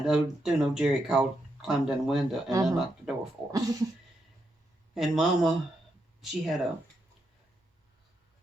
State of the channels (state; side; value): normal; both; correlation 0.82